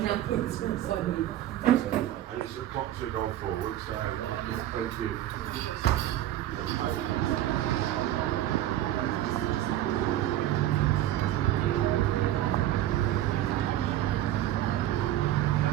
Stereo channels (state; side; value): quieter; left; 13.2 dB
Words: up, it's going to sign me. And it's a clock to go forward, so yeah, thank you.